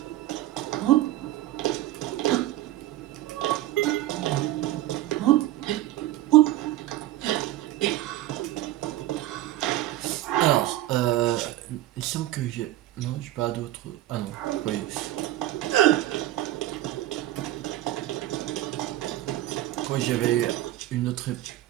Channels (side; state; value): left; quieter; 14.9 dB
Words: Alors, il semble que j'ai... Non, j'ai pas d'autres... Ah non, oui. Oui, j'avais une autre...